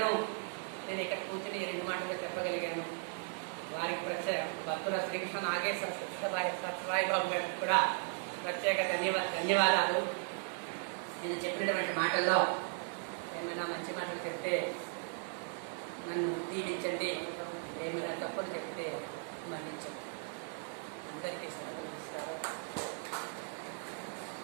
నేను ఇక్కడ కూర్చుని 2 మాటలు చెప్పగలిగాను. వారికి ప్రత్యేక భక్తుల శ్రీకృష్ణ నాగేశ్వర సత్యసాయి బాబు గారికి కూడా ప్రత్యేక ధన్యవాదాలు. నేను చెప్పినటువంటి మాటల్లో ఏమైనా మంచి మాటలు చెప్తే నన్ను దీవించండి, ఏమైనా తప్పులు చెప్తే మన్నించండి. అందరికీ సెలవు.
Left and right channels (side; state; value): left; silent; 53 dB below the other